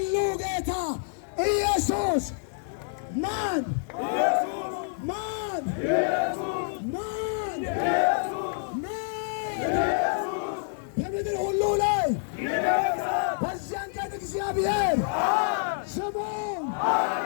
ጌታ ኢየሱስ ማን? ማን? ማን? በምድር ሁሉ ላይ በዚያን ቀን እግዚአብሔር ስሙም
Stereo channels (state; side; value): silent; right; 60 dB below the other